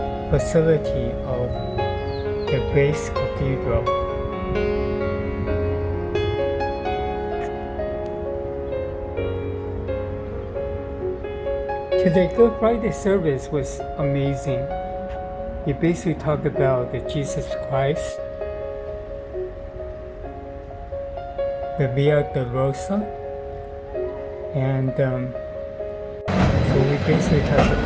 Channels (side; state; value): both; identical; correlation 1.00